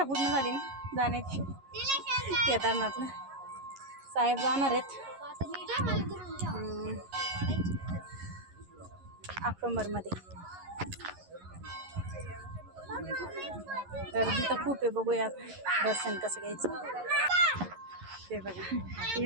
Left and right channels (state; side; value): late; left; 11 ms